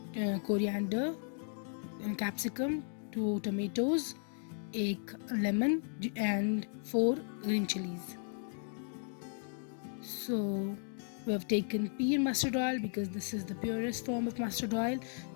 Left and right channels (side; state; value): right; silent; 54 dB below the other